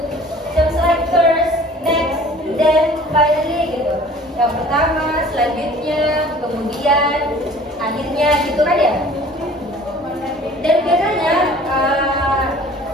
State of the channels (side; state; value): both; normal; correlation 0.48